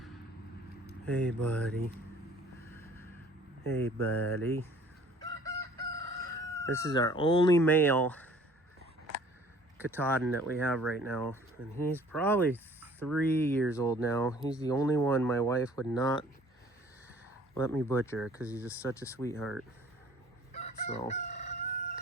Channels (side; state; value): both; normal; correlation 0.53